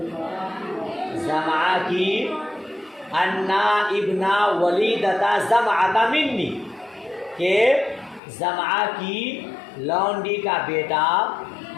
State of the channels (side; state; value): right; drops out; at 8.2 s